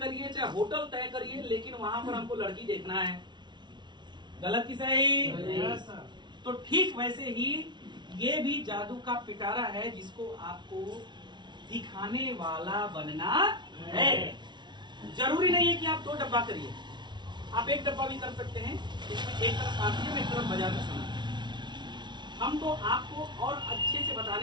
चाहे होटल तय करिए, लेकिन वहां पर हमको लड़की देखना है। गलत की सही? तो ठीक वैसे ही ये भी जादू का पिटारा है जिसको आपको दिखाने वाला बनना है। जरूरी नहीं है कि आप 2 डब्बा करिए, आप 1 डब्बा भी कर सकते हैं। इसमें एक तरफ आसियम, एक तरफ बाजार का सामान। हम तो आपको और अच्छे से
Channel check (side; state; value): left; late; 0.22 ms